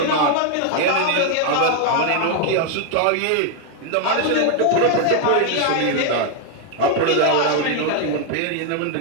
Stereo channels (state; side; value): different; both; correlation 0.01